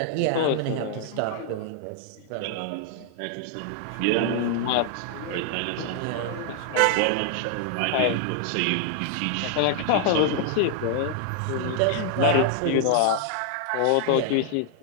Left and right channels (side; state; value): both; different; correlation 0.00